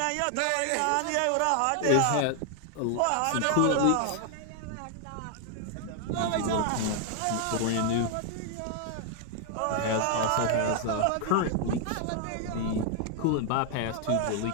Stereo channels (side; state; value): both; different; correlation 0.00